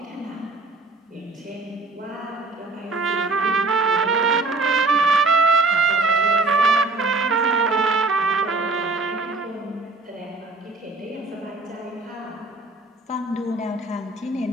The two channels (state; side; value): quieter; left; 3.3 dB